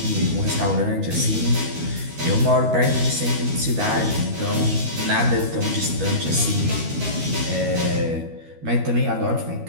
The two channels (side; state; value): left; late; 12 ms